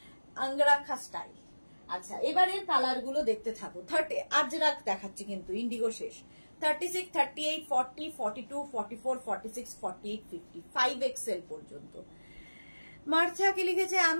অঙ্গরাখা স্টাইল। আচ্ছা, এবারের কালার গুলো দেখতে থাকো। 30 আজরাক দেখাচ্ছি কিন্তু, ইন্ডিগো শেষ। 36, 38, 40, 42, 44, 46, 48, 50, 5XL পর্যন্ত। মার্থাকে লিখেছে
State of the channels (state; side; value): inverted; both; correlation -1.00